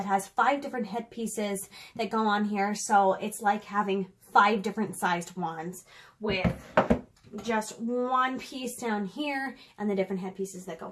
has 5 different head pieces that go on here. So it's like having 5 different sized wands with just one piece down here and the different head pieces that go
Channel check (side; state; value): both; identical; correlation 1.00